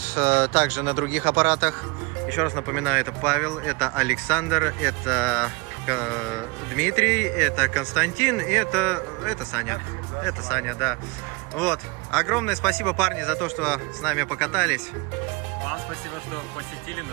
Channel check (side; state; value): left; quieter; 27.0 dB